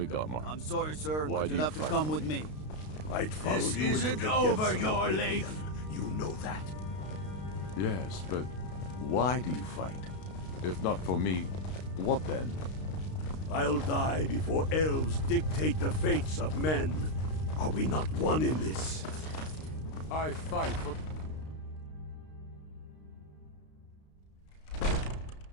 Godmar. I'm sorry, sir, Why but do you'll you have to fight come for with me. I'd follow This you into isn't the over depths of your oblivion. life. You know that. Yes, but why do you fight? If not for me, what then? I'll die before elves dictate the fates of men. Are we not one in this? I fight for...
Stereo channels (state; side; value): late; right; 32 ms